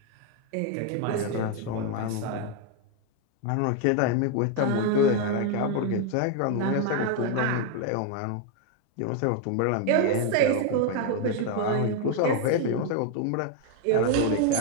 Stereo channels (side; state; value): both; different; correlation 0.01